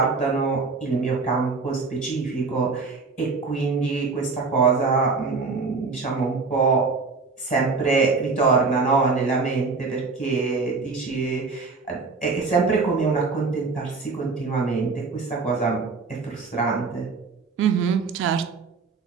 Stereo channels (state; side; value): quieter; left; 4.3 dB